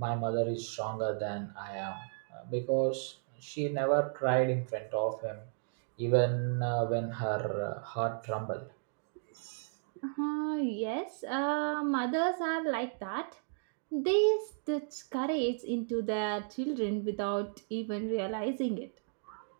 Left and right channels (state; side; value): silent; left; digital silence